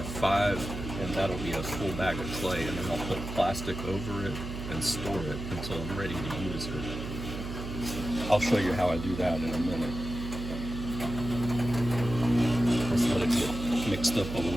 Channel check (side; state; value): right; noise; hum, 7 dB below the sound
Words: 5, and that'll be a full bag of clay, and then I'll put plastic over it and store it until I'm ready to use it. I'll show you how I do that in a minute. Let's let it get mixed up a